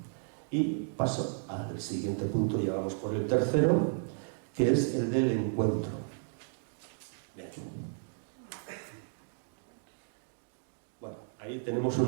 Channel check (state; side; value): silent; left; digital silence